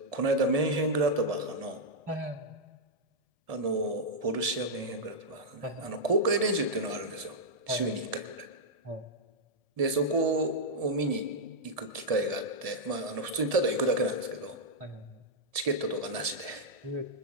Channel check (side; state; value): left; late; 1.7 ms